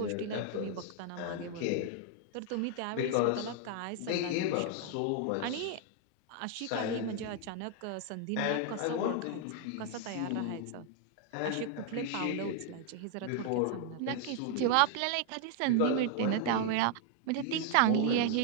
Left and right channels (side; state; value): both; different; correlation 0.00